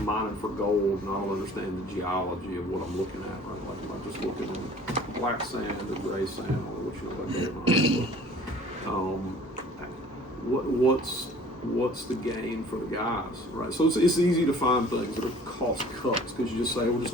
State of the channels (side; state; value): both; normal; correlation 0.49